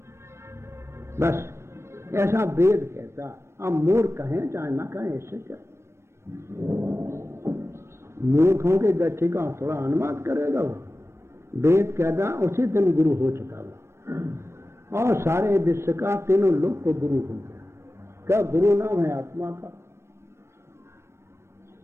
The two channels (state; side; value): late; left; 0.13 ms